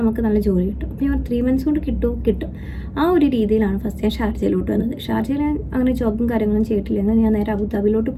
നമുക്ക് നല്ല ജോലി കിട്ടും. അപ്പോൾ ഞാൻ 3 months കൊണ്ട് കിട്ടും. ആ ഒരു രീതിയിലാണ് ഫസ്റ്റ് ഞാൻ ഷാർജയിലോട്ട് വന്നത്. ഷാർജയിൽ അങ്ങനെ ജോബും കാര്യങ്ങളും ചെയ്തിട്ടില്ലെങ്കിൽ ഞാൻ നേരെ അബുദാബിയിലോട്ട്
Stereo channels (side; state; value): both; identical; correlation 1.00